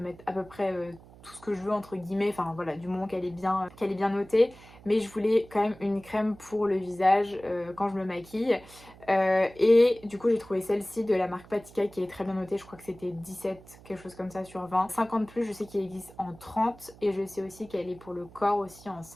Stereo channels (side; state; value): right; noise; hum, 22 dB below the sound